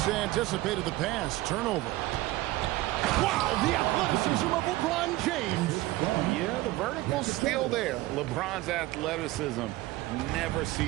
anticipated the pass. Turnover. Wow, the athleticism of LeBron James. Yeah, the vertical's still there. LeBron's athleticism never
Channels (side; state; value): left; quieter; 18.2 dB